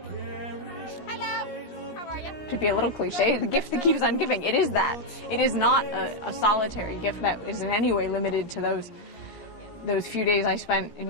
Hello, how are you? To be a little cliche, the gift that keeps on giving, it is that. It is not a solitary gift that is in any way limited to those few days I spent in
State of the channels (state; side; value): late; right; 17 ms